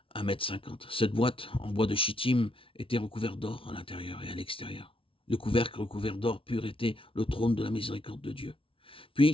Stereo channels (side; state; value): right; late; 0.26 ms